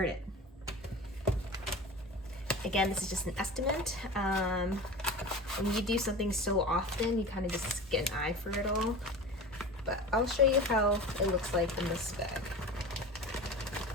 Again, this is just an estimate. When you do something so often, you kind of just get an eye for it all. But I'll show you how it looks like in this bag.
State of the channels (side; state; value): both; normal; correlation 0.33